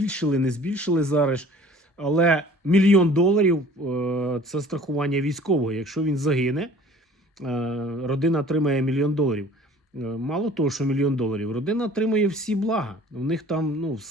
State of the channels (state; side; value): normal; both; correlation 0.49